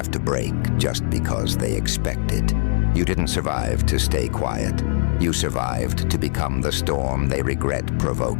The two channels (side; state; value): right; silent; digital silence